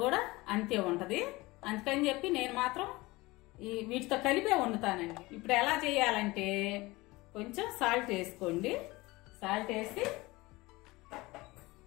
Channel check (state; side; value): quieter; right; 21.5 dB